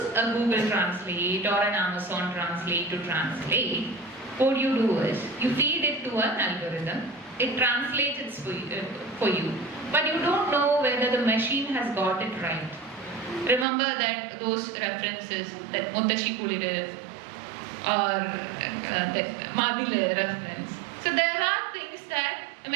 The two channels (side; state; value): left; drops out; at 13.7 s